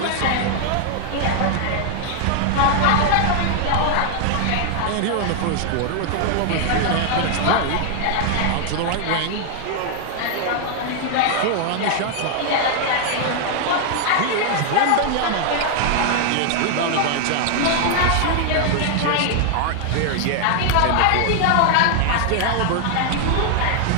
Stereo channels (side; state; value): both; different; correlation 0.00